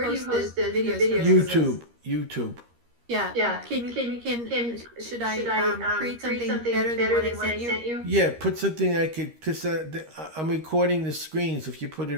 post the videos? YouTube. Yeah. Should I create something better than what I sent you? Yeah, put something I could, because I'm recording the screens. If you put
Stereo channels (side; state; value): left; late; 13 ms